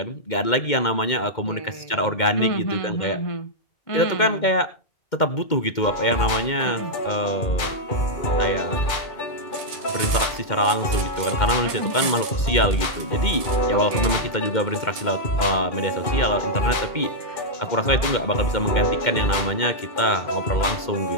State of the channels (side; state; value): right; late; 2.1 ms